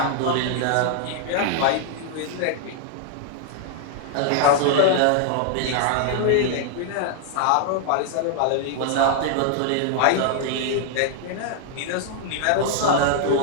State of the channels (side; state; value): both; different; correlation 0.00